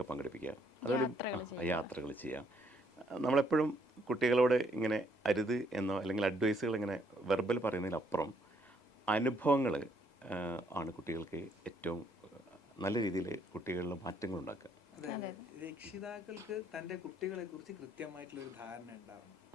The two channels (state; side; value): late; right; 2.0 ms